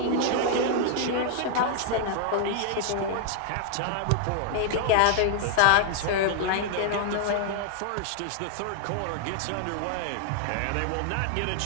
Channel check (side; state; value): both; different; correlation 0.00